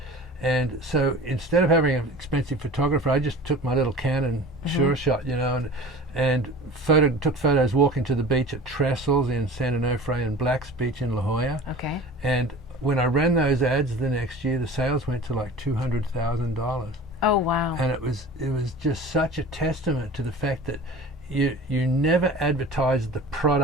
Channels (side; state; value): both; normal; correlation 0.39